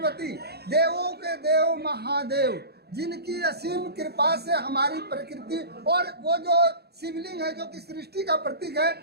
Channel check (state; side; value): late; left; 0.47 ms